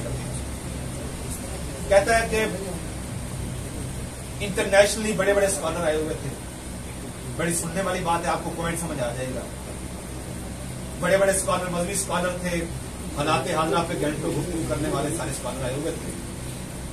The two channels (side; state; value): both; identical; correlation 1.00